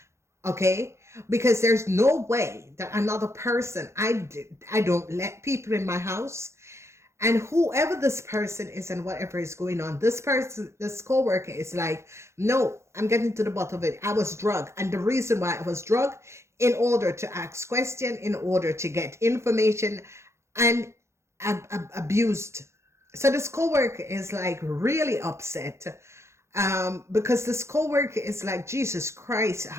Okay, because there's no way that another person, I don't let people in my house. And whoever this person is and whatever is going on, this person, this coworker is like, no, I'm getting to the bottom of it. I was drugged. And the reason why I was drugged, in order to ask questions, in order to get information, and abused. So this coworker is like really upset. Because this coworker is like, Jesus Christ,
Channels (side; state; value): left; late; 0.13 ms